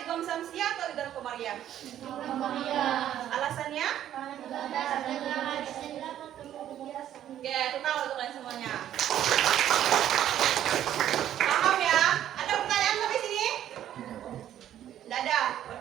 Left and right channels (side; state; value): left; quieter; 11.3 dB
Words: samsiah atau idgham qamariyah? Alasannya? Oke, total untuk kalian semuanya. Paham ya? Ada pertanyaan sampai sini? Tidak ada,